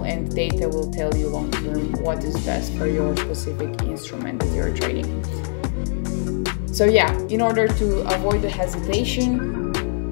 and data will tell you long term what is best for your specific instrument that you're trading. So yeah, in order to avoid the hesitation,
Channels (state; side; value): silent; right; 57 dB below the other